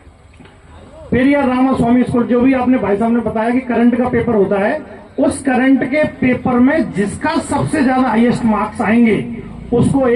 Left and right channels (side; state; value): both; identical; correlation 1.00